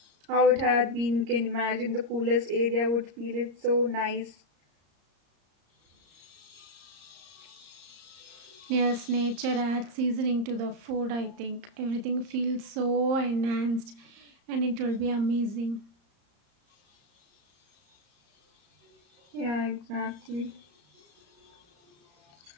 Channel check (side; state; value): left; late; 34 ms